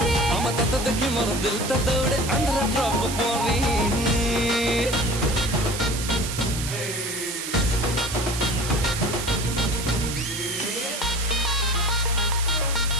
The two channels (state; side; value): noise; right; hiss, 6 dB below the sound